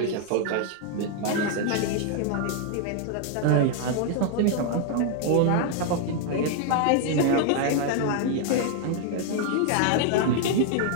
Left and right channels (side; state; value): both; different; correlation 0.00